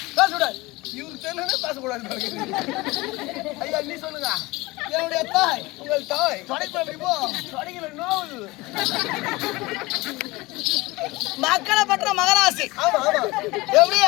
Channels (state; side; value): quieter; right; 21.8 dB